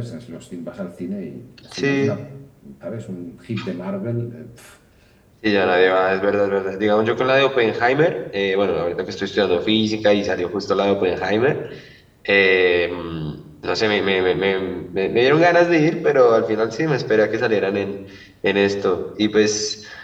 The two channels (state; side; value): identical; both; correlation 1.00